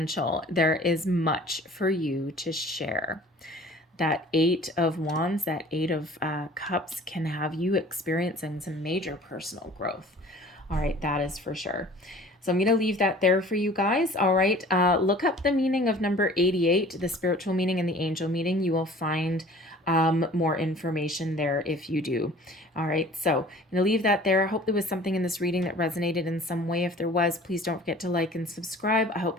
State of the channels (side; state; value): both; normal; correlation 0.47